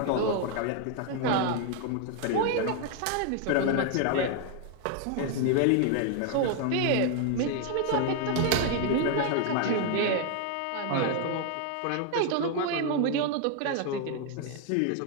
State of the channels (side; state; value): both; different; correlation 0.00